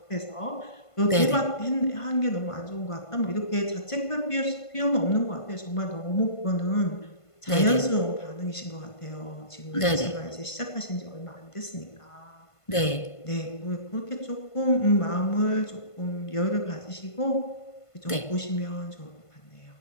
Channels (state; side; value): late; right; 1.5 ms